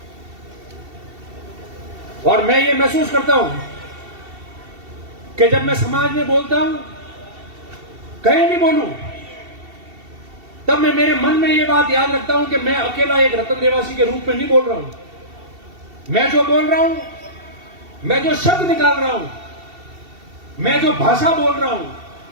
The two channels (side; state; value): left; late; 2.7 ms